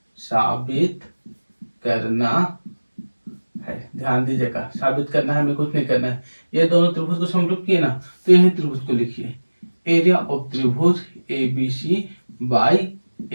साबित करना है। ध्यान दीजिएगा, साबित करना है, हमें कुछ नहीं करना है। ये दोनों त्रिभुज को समरूप किए ना, तो यही त्रिभुज को लिखिए एरिया ऑफ त्रिभुज ABC बाई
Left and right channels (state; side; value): inverted; both; correlation -1.00